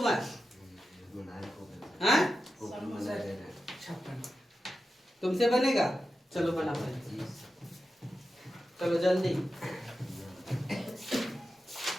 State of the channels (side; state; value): both; normal; correlation 0.91